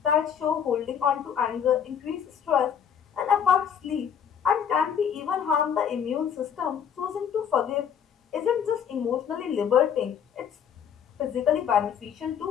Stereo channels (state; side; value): quieter; right; 8.1 dB